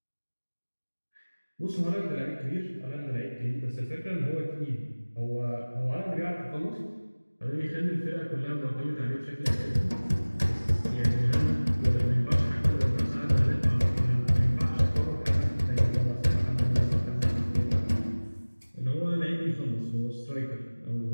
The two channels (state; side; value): inverted; both; correlation -1.00